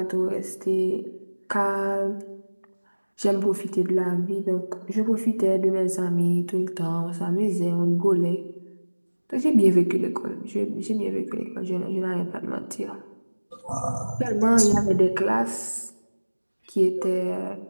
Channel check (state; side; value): inverted; both; correlation -1.00